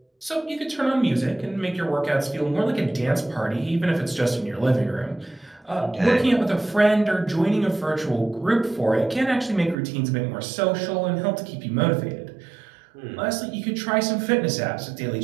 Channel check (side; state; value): left; drops out; at 9.8 s